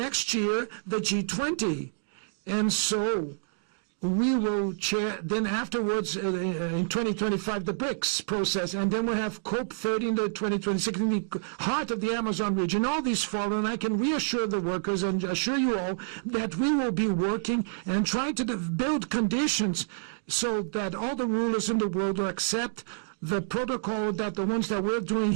year the G20, and so we will chair, then afterwards, in 2025, the BRICS process, and then we'll have COP30 in the 2026, in the heart of the Amazon region. All these follow, and I can reassure the workers and assure you all that we will be working and trying to build conditions so that all the rulers in the world will accept the protocol that the ones that we're doing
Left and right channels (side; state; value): left; silent; digital silence